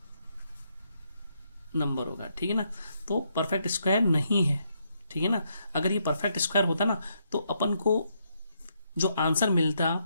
नंबर होगा। ठीक है ना, तो परफेक्ट स्क्वायर नहीं है। ठीक है ना, अगर ये परफेक्ट स्क्वायर होता ना तो अपन को जो आंसर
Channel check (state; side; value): inverted; both; correlation -0.77